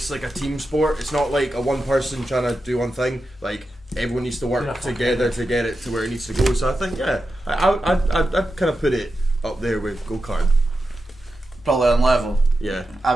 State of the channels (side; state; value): both; normal; correlation 0.90